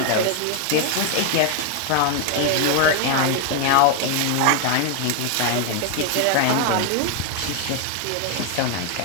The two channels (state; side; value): different; both; correlation 0.00